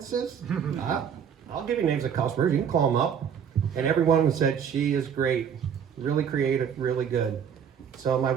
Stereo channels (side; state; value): left; quieter; 7.9 dB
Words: I'll give you names of customers. You can call them up. And everyone said, she is great, really creative, really good. So my